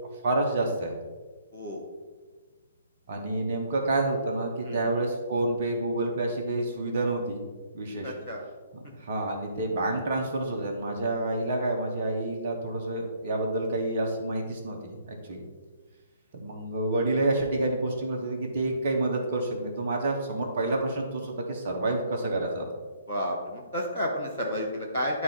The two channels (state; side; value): inverted; both; correlation -0.66